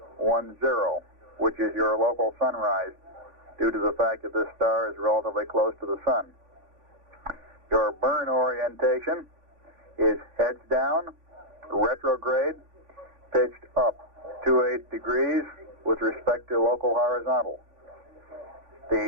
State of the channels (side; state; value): left; late; 3.5 ms